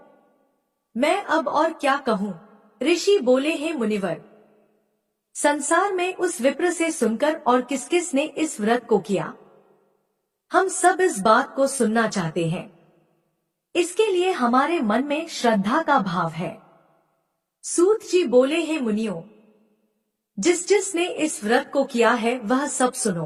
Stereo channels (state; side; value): identical; both; correlation 1.00